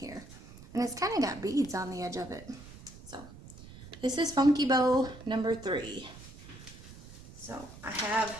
And it's kind of got beads on the edge of it. So this is Funky Bow number 3. So I have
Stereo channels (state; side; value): noise; right; rumble, 17 dB below the sound